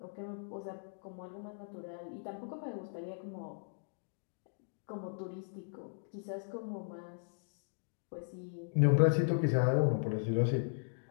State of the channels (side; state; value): right; silent; digital silence